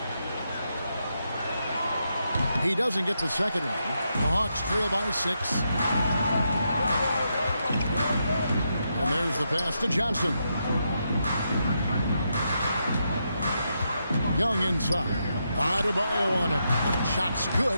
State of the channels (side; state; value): both; inverted; correlation -0.82